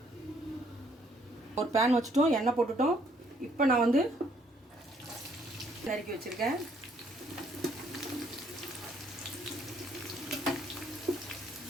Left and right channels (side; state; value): both; normal; correlation 0.67